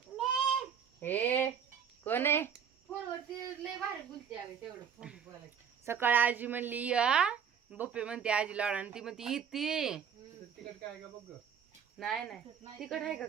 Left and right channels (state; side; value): quieter; left; 7.6 dB